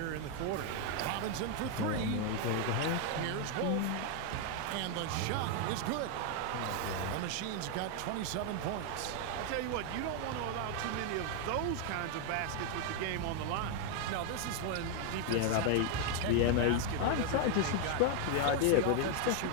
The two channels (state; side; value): different; both; correlation 0.01